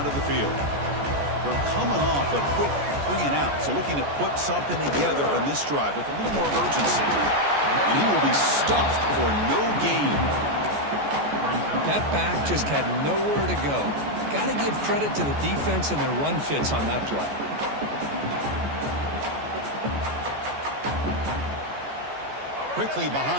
the field. They're coming off a quick 3-and-out, so looking to put something together on this drive with a little more urgency. And he will be stuffed for no gain. That back just had nowhere to go. Got to give credit to the defense and their run fits on that play. Quickly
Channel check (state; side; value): late; left; 14 ms